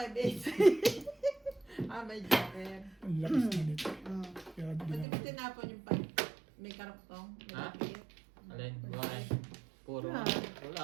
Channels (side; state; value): left; drops out; at 5.1 s